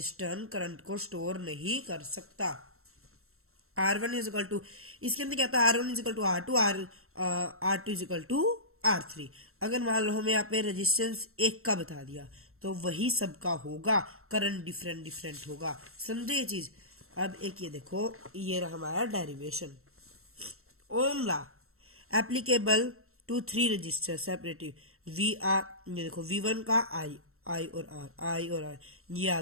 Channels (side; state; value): left; late; 0.62 ms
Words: करंट को स्टोर नहीं कर सकता। R1 इज इक्वल टू, इसके अंदर क्या था, R1 is equal to R2, R2 is equal to R3। अगर मान लो हमें यहाँ पे रेजिस्टेंस एक का बता दिया, तो वही सबका होगा, करंट डिफरेंट डिफरेंट होगा। समझे ये चीज? अब एक ये देखो, ये रहा हमारा derivation. Ohm law applicable to 3 register separative we are, ये देखो V1 का आई और आर, ये आ